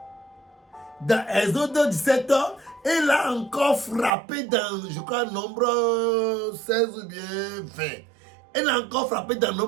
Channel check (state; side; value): drops out; left; at 4.1 s